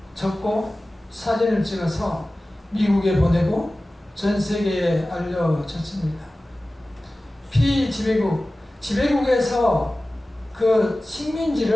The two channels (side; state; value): both; normal; correlation 0.97